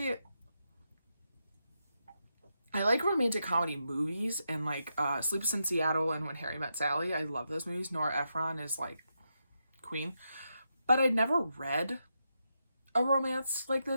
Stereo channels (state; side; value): inverted; both; correlation -0.85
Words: like romantic comedy movies, and like Sleepless in Seattle and When Harry Met Sally. I love those movies. Nora Ephron is like queen. But I'd never read a romance like